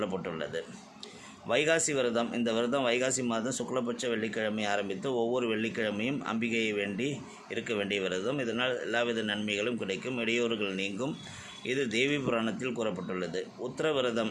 வைகாசி விரதம். இந்த விரதம் வைகாசி மாதம் சுக்லபட்ச வெள்ளிக்கிழமை ஆரம்பித்து ஒவ்வொரு வெள்ளிக்கிழமையும் அம்பிகையை வேண்டி இருக்க வேண்டிய விரதம். இதனால் எல்லாவித நன்மைகளும் கிடைக்கும், இடையூறுகள் நீங்கும். இது தேவி புராணத்தில் கூறப்பட்டுள்ளது. உத்திர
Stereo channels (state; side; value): identical; both; correlation 1.00